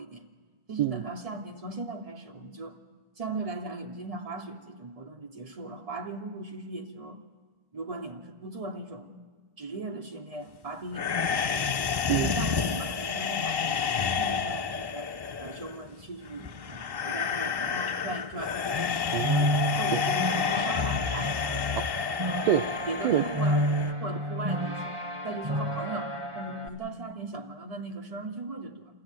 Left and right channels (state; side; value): late; left; 1.1 ms